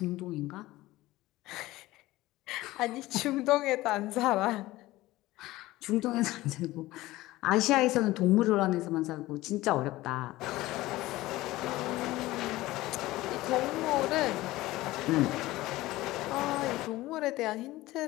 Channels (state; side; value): quieter; right; 17.8 dB